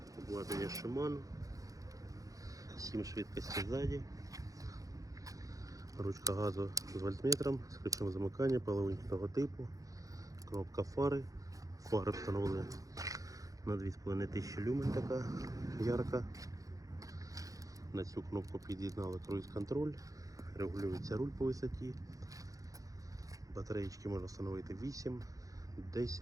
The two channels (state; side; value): late; left; 0.17 ms